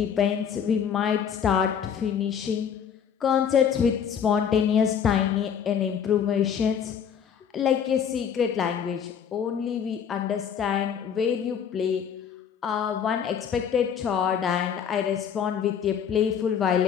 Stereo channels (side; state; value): right; quieter; 7.8 dB